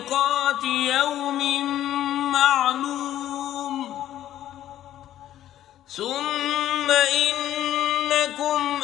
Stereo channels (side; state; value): right; quieter; 12.3 dB